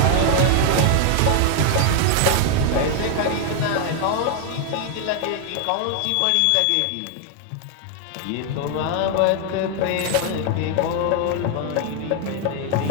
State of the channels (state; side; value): different; both; correlation 0.00